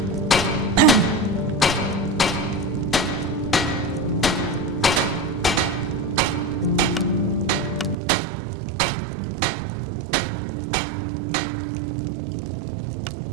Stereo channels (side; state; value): left; drops out; at 8.0 s